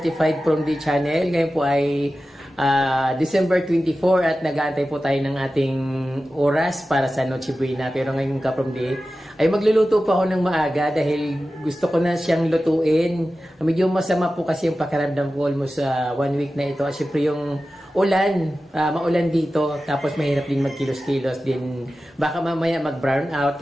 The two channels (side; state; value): both; normal; correlation 0.94